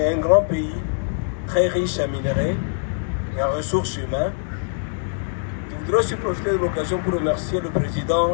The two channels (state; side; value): silent; right; digital silence